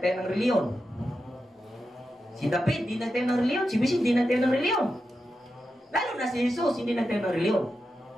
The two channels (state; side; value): normal; both; correlation 0.89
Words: ng reliyon. Si David hindi nagtayo ng reliyon. Si Bishop hindi nagtayo ng reliyon. Lalo na si Jesus hindi nagtayo ng reliyon.